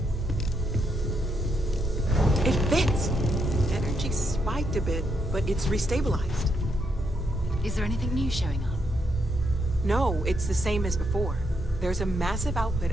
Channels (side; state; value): both; normal; correlation 0.78